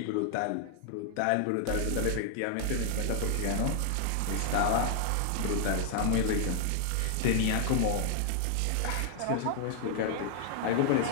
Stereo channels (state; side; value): different; both; correlation 0.00